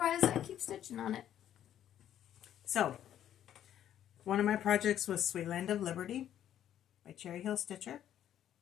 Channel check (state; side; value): quieter; right; 10.8 dB